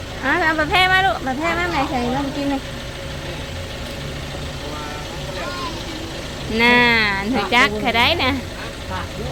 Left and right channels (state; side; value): identical; both; correlation 1.00